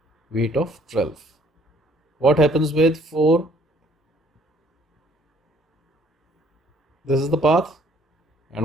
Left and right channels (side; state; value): both; normal; correlation 0.61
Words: weight of 12. What happens with 4? This is the path. And